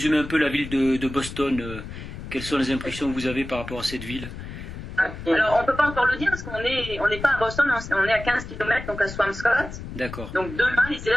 un peu la ville de Boston, quelles sont les impressions que vous avez par rapport à cette ville? Alors, on ne peut pas encore le dire parce qu'on n'est pas à Boston, on est à 15 km, donc à Swampscott. D'accord. Donc demain, les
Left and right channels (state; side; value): noise; left; rumble, 10 dB below the sound